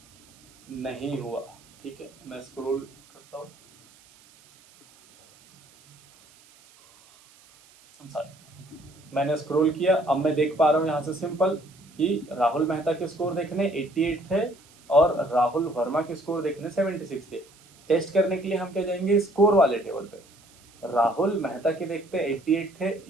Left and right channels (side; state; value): right; noise; hiss, 27 dB below the sound